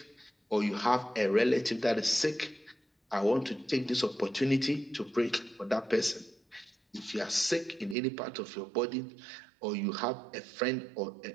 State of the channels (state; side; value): drops out; left; at 8.0 s